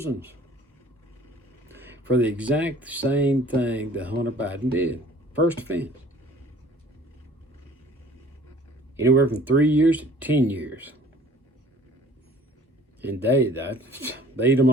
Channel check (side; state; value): both; normal; correlation 0.51